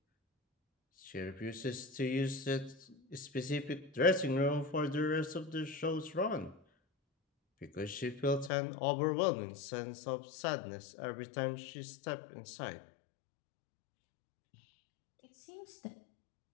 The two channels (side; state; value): right; drops out; at 8.5 s